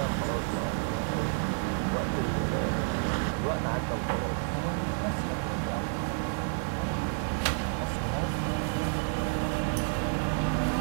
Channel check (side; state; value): left; silent; 58 dB below the other